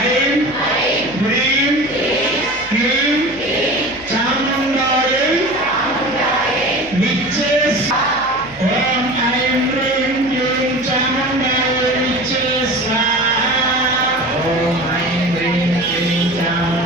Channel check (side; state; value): left; noise; hum, 21 dB below the sound